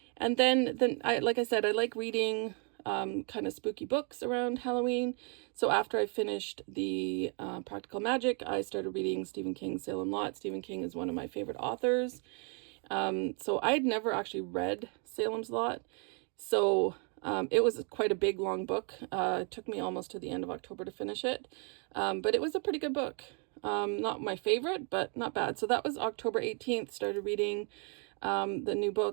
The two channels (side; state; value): left; quieter; 37.8 dB